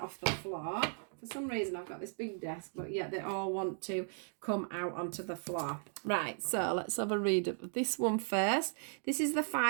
off the floor. For some reason I've got this big desk, but yet they all want to come out onto the floor. Right, so let's have a read of this one first. This is the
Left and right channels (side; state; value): left; silent; 54 dB below the other